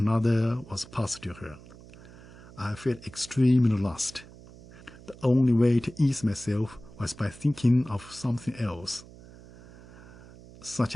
was passed to her. I felt extremely lost. The only way to ease myself was by thinking of something else, such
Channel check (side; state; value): right; noise; hum, 20 dB below the sound